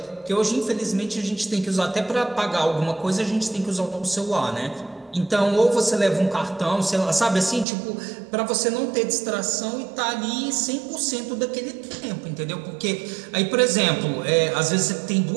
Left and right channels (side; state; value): left; drops out; at 7.7 s